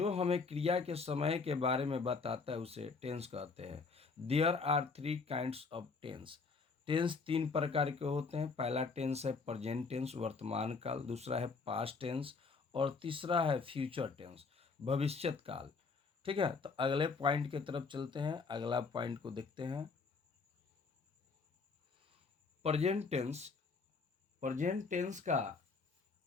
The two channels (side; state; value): right; quieter; 4.6 dB